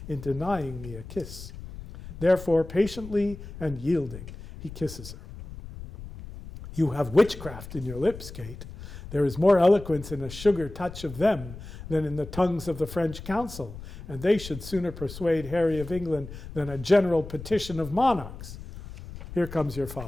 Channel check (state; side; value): noise; left; rumble, 13 dB below the sound